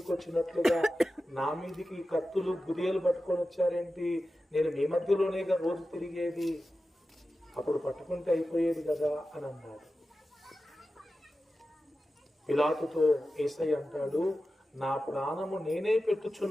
వచ్చినట్లుగా నా మీదికి కత్తులు గురియలు పట్టుకొని వచ్చారేంటి? నేను మీ మధ్యలోనేగా రోజు తిరిగేది, అప్పుడు పట్టుకుంటే అయిపోయేది కదా అని అన్నాడు. పిలాతుతో యేసయ్య అంటాడు, నా ప్రాణము నేనే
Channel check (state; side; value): normal; both; correlation 0.93